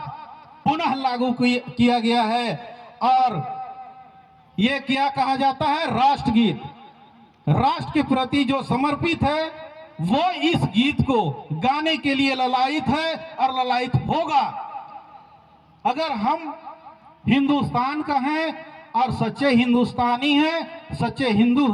पुनः लागू किया गया है। और ये क्या कहा जाता है? राष्ट्रगीत। राष्ट्र के प्रति जो समर्पित है वो इस गीत को गाने के लिए ललायित है और ललायित होगा। अगर हम हिंदुस्तान का हैं और सच्चे हिंदुस्तानी हैं, सच्चे हिंदू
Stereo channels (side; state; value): both; identical; correlation 1.00